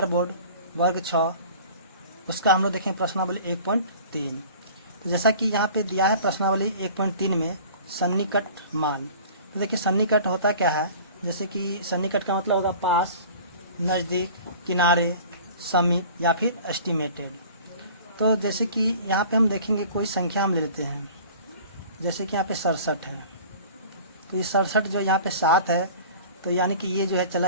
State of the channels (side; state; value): both; inverted; correlation -0.44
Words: बोर्ड वर्ग 6, उसका हम लोग देखेंगे प्रश्नावली 1.3। तो जैसा कि यहाँ पे दिया है प्रश्नावली 1.3 में सन्निकट मान। तो देखिए सन्निकट होता क्या है, जैसे कि सन्निकट का मतलब होगा पास, नज़दीक, किनारे, समीप या फिर एस्टिमेटेड। तो जैसे कि यहाँ पे हम देखेंगे कोई संख्या हम ले लेते हैं, जैसे कि यहाँ पे 67 है। तो ये 67 जो यहाँ पे 7 है, तो यानी कि ये जो है